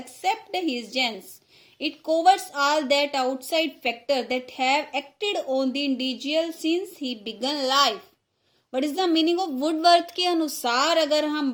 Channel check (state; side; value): identical; both; correlation 1.00